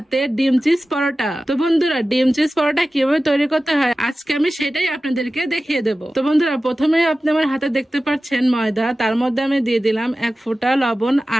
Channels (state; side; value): normal; both; correlation 0.95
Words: ডিম চিজ পরোটা। তো বন্ধুরা ডিম চিজ পরোটা কিভাবে তৈরি করতে হয় আজকে আমি সেটাই আপনাদেরকে দেখিয়ে দেব। তো বন্ধুরা প্রথমে আপনি আমার হাতে দেখতে পাচ্ছেন ময়দা, তার মধ্যে আমি দিয়ে দিলাম 1 ফোঁটা লবণ